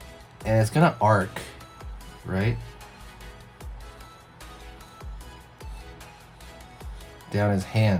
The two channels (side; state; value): both; identical; correlation 1.00